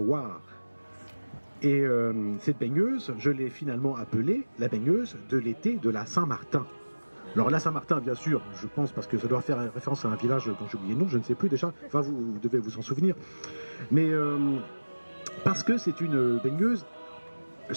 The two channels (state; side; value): inverted; both; correlation -1.00